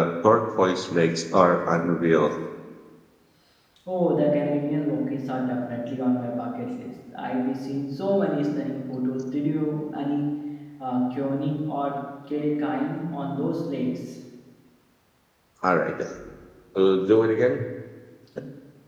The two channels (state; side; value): identical; both; correlation 1.00